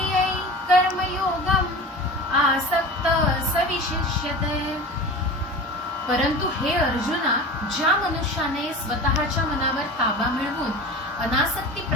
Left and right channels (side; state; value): both; normal; correlation 0.34